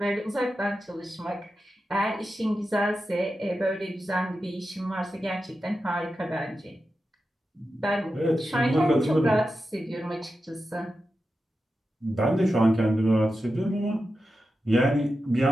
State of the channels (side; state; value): both; normal; correlation 0.91